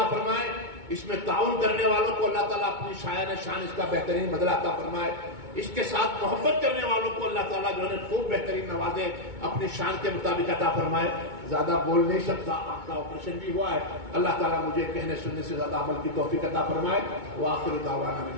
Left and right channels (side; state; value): left; late; 2.2 ms